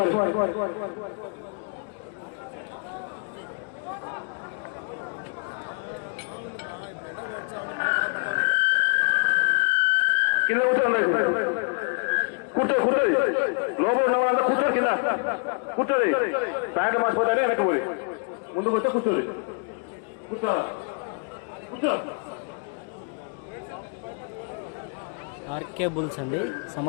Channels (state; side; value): quieter; right; 38.8 dB